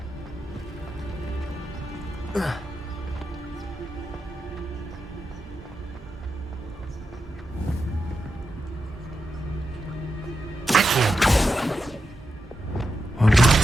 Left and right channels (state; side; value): normal; both; correlation 0.87